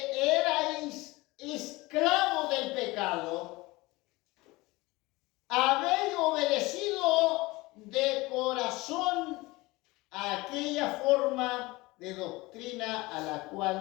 erais esclavos del pecado, habéis obedecido de corazón a aquella forma de doctrina a la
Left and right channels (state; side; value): quieter; right; 21.6 dB